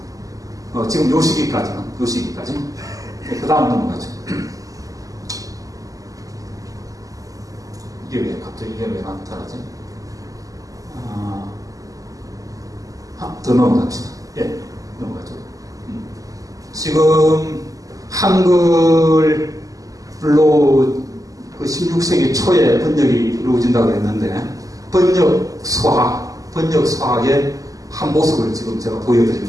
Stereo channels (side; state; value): left; late; 0.17 ms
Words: 지금 요 시기까지. 그 다음 넘어가죠. 이게 왜 나타나지? 더 넘어갑시다. 예, 넘어가죠. 지금 한글로 그 16세기 초에 번역이 이루어진다고 했는데, 번역 수학의 한 모습을 지금 제가